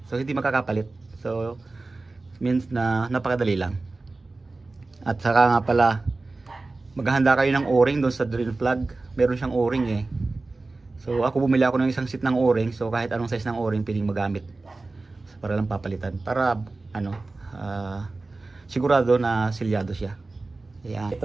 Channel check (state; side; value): quieter; left; 3.4 dB